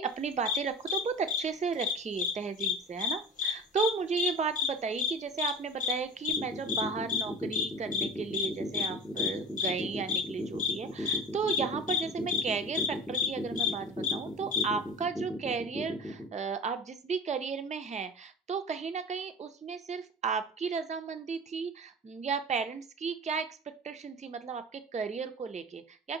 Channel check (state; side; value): normal; both; correlation 0.35